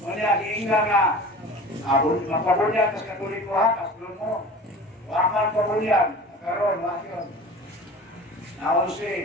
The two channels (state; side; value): normal; both; correlation 0.38